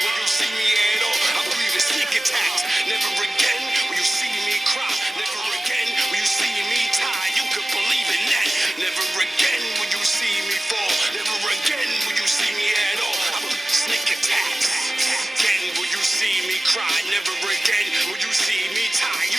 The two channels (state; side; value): normal; both; correlation 0.95